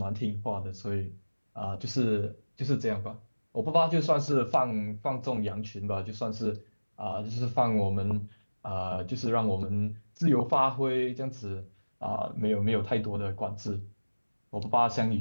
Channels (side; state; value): both; inverted; correlation -1.00